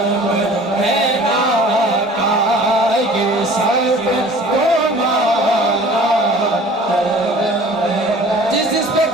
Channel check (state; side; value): normal; both; correlation 0.47